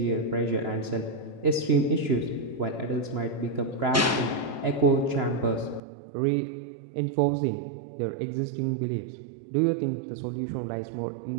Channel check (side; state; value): left; drops out; at 5.8 s